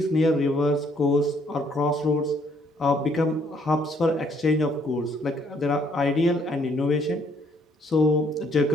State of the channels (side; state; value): both; normal; correlation 0.66